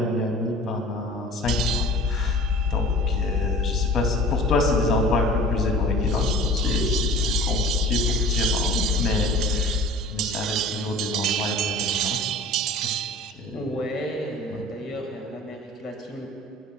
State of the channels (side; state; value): both; normal; correlation 0.43